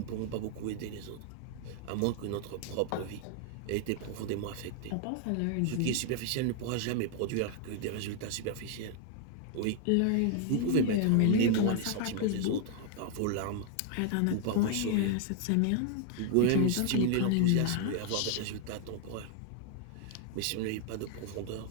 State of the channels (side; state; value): both; different; correlation 0.00